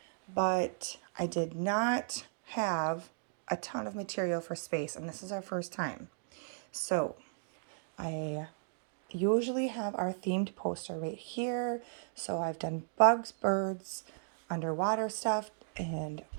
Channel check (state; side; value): silent; left; digital silence